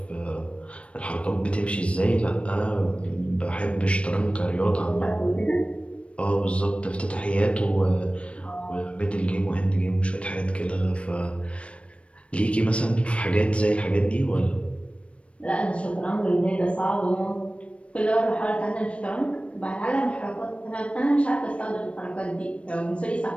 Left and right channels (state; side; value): late; right; 0.061 ms